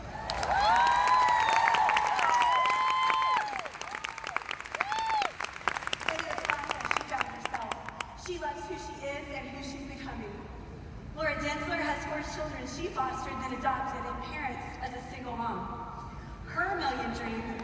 She loves who she is and who she's becoming. Laura Densler has 4 children she fostered then adopted and parents as a single mom. Her million dream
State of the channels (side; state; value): both; identical; correlation 1.00